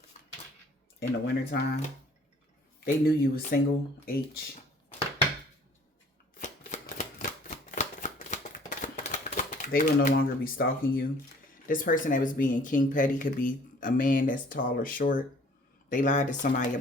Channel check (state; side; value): normal; both; correlation 0.54